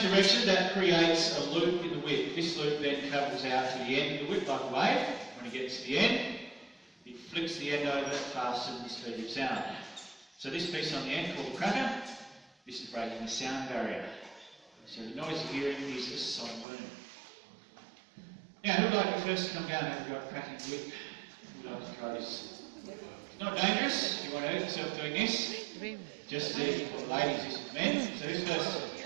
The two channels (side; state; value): left; drops out; at 16.7 s